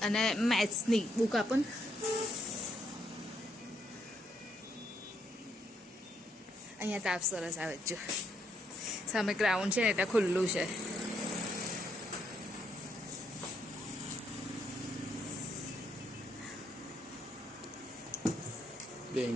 અને મેથ્સની બુક આપો ને. અહીંયા તાપ સરસ આવે છે જો સામે ગ્રાઉન્ડ છે ને એટલે ખુલ્લું છે.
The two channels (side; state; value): both; normal; correlation 0.75